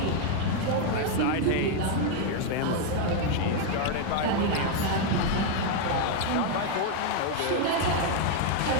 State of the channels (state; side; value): different; both; correlation 0.01